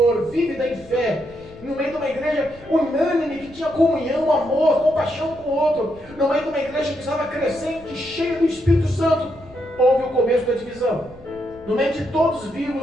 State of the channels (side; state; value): left; noise; rumble, 22 dB below the sound